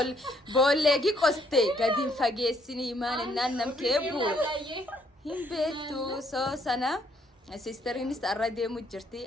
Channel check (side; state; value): both; normal; correlation 0.69